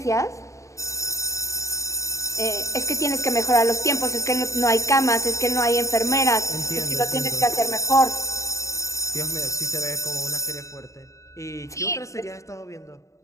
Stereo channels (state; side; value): late; right; 0.15 ms